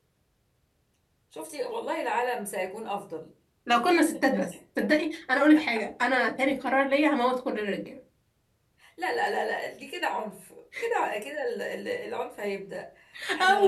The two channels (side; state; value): both; identical; correlation 1.00